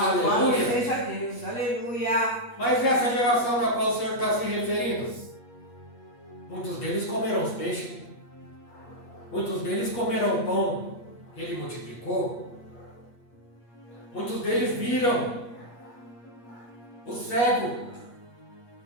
Seja Deus, aleluia. Mas essa geração na qual o Senhor está se referindo, muitos deles comeram os peixes. Muitos deles comeram o pão que ele multiplicou. Muitos deles viram o cego,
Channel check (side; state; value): right; late; 8.5 ms